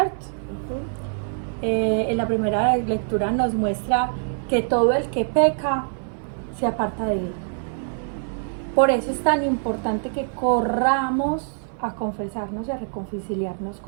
En la primera lectura nos muestra que todo el que peca se aparta de Él. Por eso es tan importante que corramos a confesarnos y a reconciliarnos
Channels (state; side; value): silent; left; 63 dB below the other